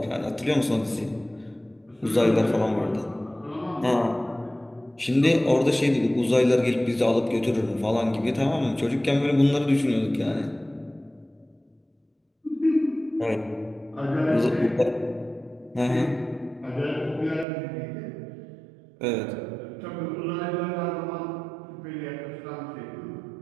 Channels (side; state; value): left; drops out; at 17.4 s